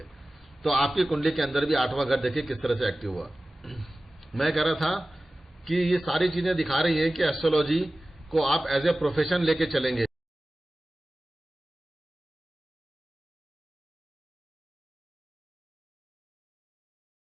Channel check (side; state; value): both; normal; correlation 0.96